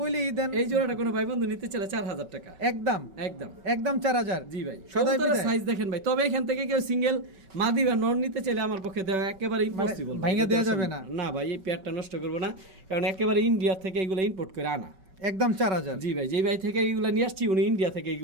দেন। এই জোড়াটা কোনো ভাই বন্ধু নিতে চাইলে 4000 টাকা একদম একদম একদম 4000। জি ভাই, সদাই কবুতরের বিদায়। সাইজ দেখেন ভাই, তবে এখান থেকে কেউ সিঙ্গেল মাদি বা নর নিতে চাইলে আমার পক্ষে দেওয়া একেবারে ইম্পসিবল, ভাঙা দেওয়া যাবে না। না ভাই, এই পেয়ারটা নষ্ট করবো না, কারণ একেবারে ইন্ডিয়া থেকে এগুলো ইম্পোর্ট করে আনা। একদম 4000। জি ভাই, যেই ভাই থেকে এগুলো নিয়ে আসছি, উনি ইন্ডিয়া থেকে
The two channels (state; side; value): late; left; 5.3 ms